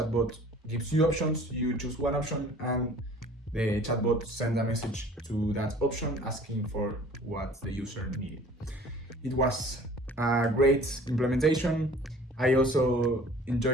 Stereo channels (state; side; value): normal; both; correlation 0.49